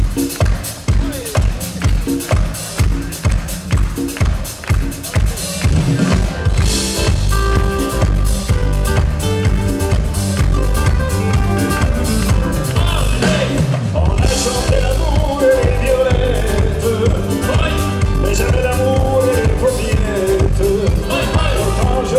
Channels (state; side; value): identical; both; correlation 1.00